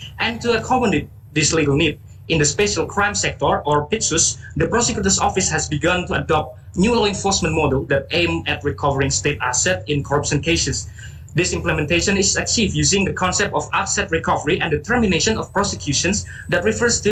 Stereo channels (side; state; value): both; identical; correlation 1.00